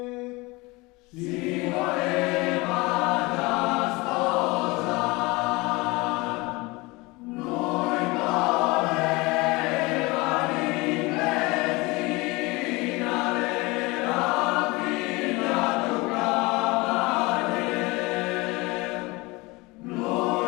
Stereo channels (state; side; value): quieter; right; 23.9 dB